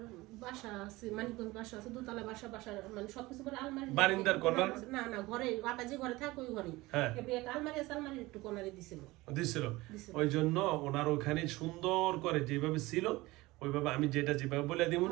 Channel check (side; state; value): left; quieter; 20.3 dB